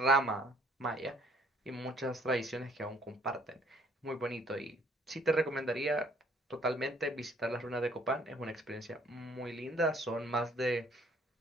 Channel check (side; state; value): both; normal; correlation 0.61